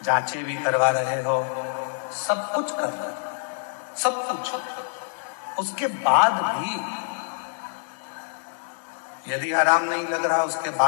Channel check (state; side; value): silent; right; 61 dB below the other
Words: जांचें भी करवा रहे हो, सब कुछ कर रहे हो, सब कुछ। उसके बाद भी यदि आराम नहीं लग रहा, उसके